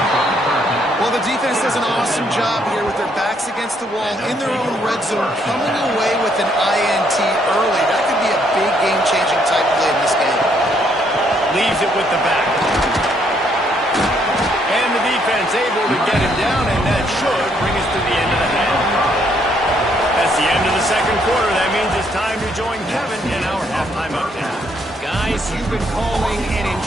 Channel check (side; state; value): both; normal; correlation 0.70